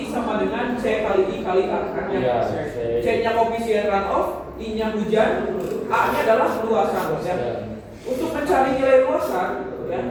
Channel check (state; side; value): identical; both; correlation 1.00